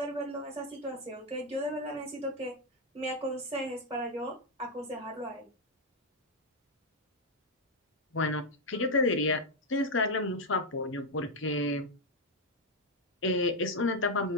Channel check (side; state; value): both; normal; correlation 0.01